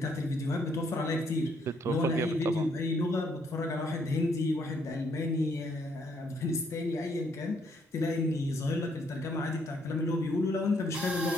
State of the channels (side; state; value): both; normal; correlation 0.70